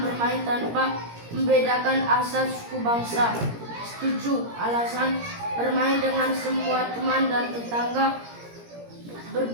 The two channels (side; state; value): left; late; 17 ms